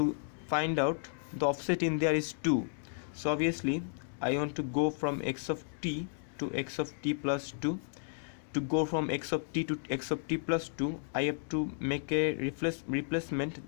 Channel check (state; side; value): silent; right; digital silence